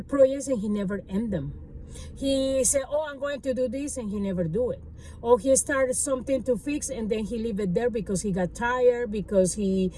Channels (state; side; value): identical; both; correlation 1.00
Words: projects and he never end them. He said, oh, I'm going to do this, and he never do it. Or he started something to fix, and then he leave it there because he got tired, because he